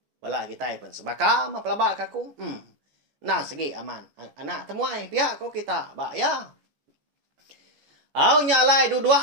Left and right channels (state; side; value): late; left; 14 ms